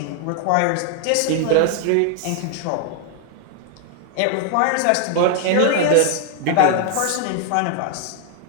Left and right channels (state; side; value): different; both; correlation 0.00